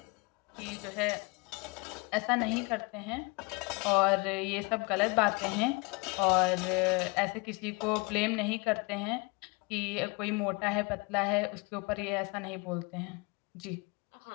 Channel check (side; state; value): right; quieter; 28.8 dB